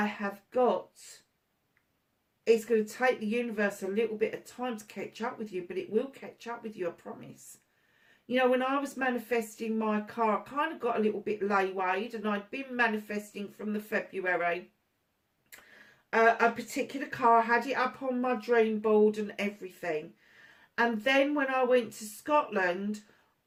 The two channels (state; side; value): identical; both; correlation 1.00